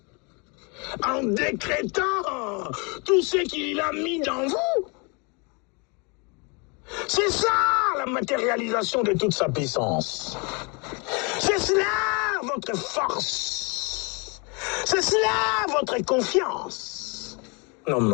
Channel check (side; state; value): right; quieter; 32.1 dB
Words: en décrétant tout ce qu'il a mis dans vous. C'est ça la matérialisation de toute sa puissance. C'est cela votre force. C'est cela votre confiance.